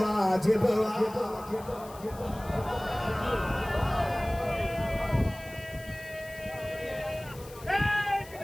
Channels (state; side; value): noise; left; hiss, 20 dB below the sound